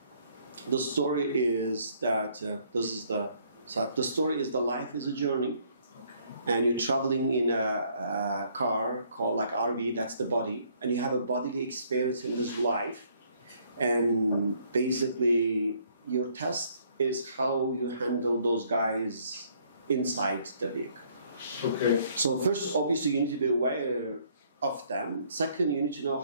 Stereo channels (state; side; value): inverted; both; correlation -0.65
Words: story is the life is a journey, and you're traveling in a car called like RV, that's the body, and you have a bodily experience in this life, and basically your test is how you handle those guys inside the vehicle. Okay. So first, obviously, you need to be aware of them. Second, you need to know